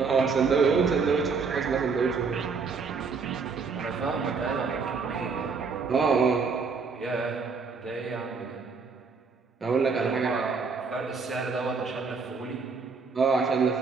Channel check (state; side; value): quieter; left; 4.9 dB